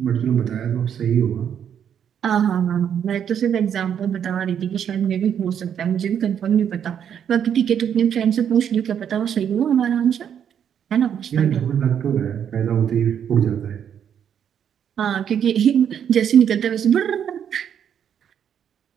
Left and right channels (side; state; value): left; quieter; 8.7 dB